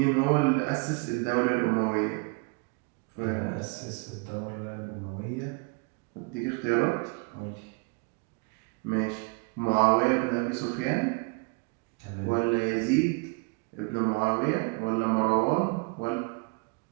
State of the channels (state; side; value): quieter; left; 31.2 dB